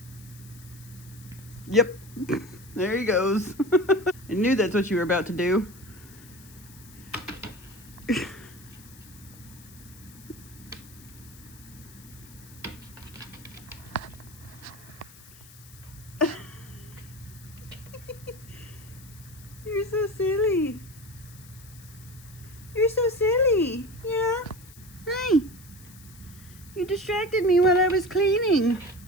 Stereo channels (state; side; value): noise; left; hiss, 21 dB below the sound